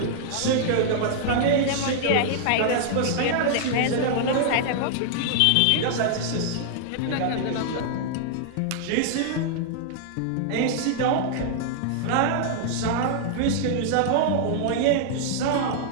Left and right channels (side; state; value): both; different; correlation -0.01